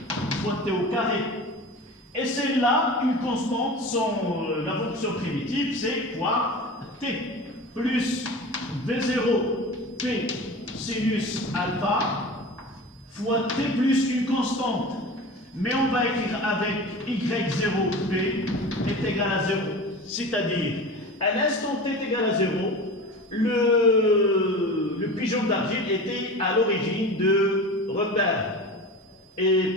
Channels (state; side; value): normal; both; correlation 0.33